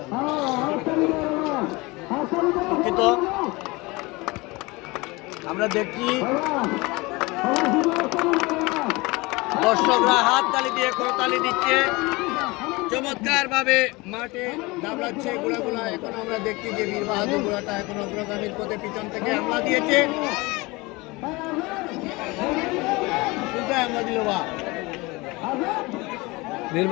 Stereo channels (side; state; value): right; quieter; 23.7 dB